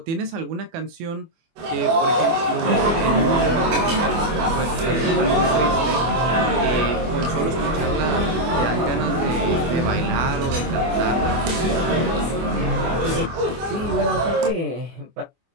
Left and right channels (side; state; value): left; late; 24 ms